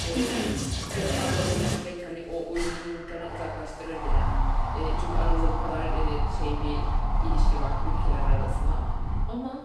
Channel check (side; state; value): both; identical; correlation 1.00